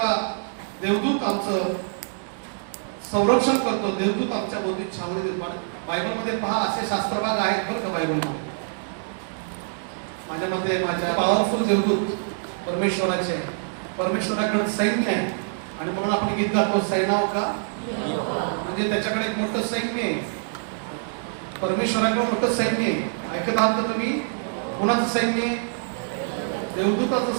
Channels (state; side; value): silent; left; 61 dB below the other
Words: देवदूत आमचं संरक्षण करतो. देवदूत आमच्या भोवती छावणी देतो. बायबलमध्ये पहा असे शास्त्रभाग आहेत बरं का बायबलमध्ये. माझ्या मते माझ्या पॉवरफुल देवदूत परमेश्वराचे आहे. परमेश्वराकडे सैन्य आहे आणि म्हणून आपण गीत गातो सैन्याव का, म्हणजे त्याच्याकडे एक मोठं सैन्य आहे. परमेश्वराकडे मोठं सैन्य आहे. ऐकत आहात का तुम्ही? कोणाचं सैन्य आहे?